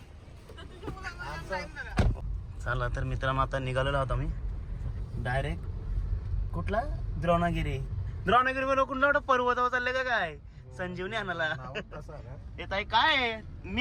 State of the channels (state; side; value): identical; both; correlation 1.00